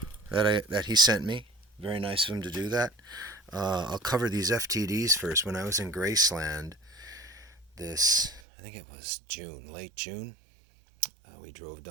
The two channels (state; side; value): drops out; left; at 8.4 s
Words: that he sent me. Very nice of him to do that. I'll cover these FTDs first. When I was in Graceland, I think it was late June, we drove